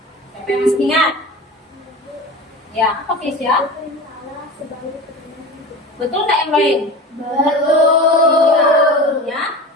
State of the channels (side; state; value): both; normal; correlation 0.32